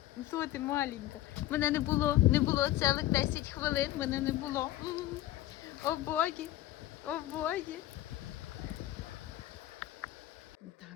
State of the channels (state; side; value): quieter; right; 14.8 dB